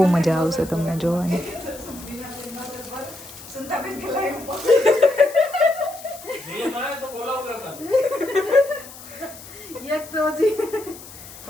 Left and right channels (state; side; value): noise; left; hiss, 16 dB below the sound